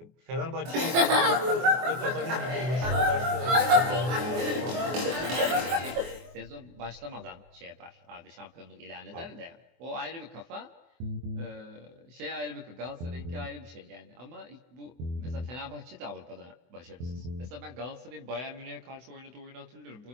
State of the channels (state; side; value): late; left; 24 ms